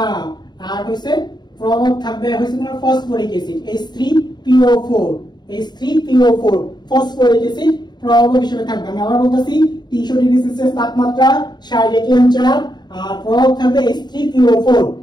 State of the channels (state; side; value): late; right; 0.21 ms